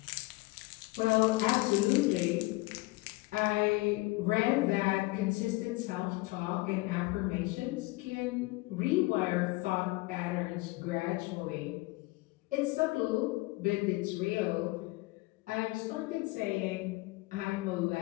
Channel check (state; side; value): quieter; right; 22.2 dB